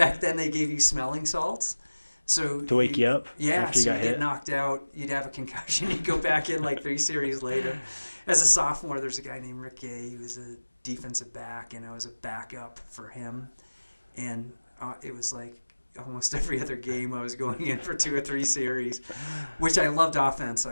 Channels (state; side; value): inverted; both; correlation -1.00